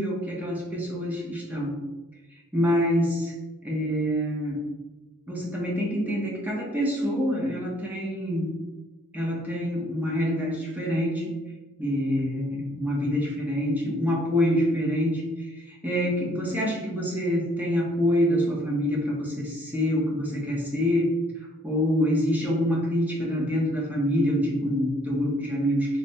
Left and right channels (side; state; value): both; normal; correlation 0.64